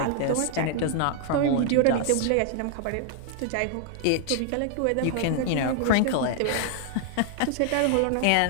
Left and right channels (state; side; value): different; both; correlation 0.00